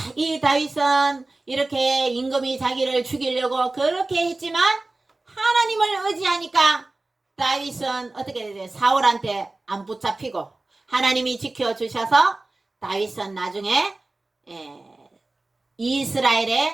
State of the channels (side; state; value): left; quieter; 3.0 dB